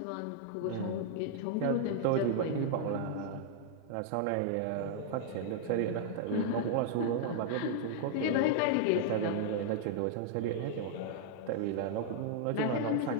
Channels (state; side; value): different; both; correlation -0.01